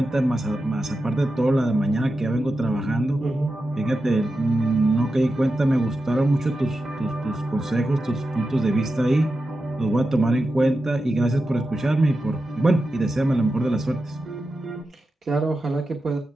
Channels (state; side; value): normal; both; correlation 0.91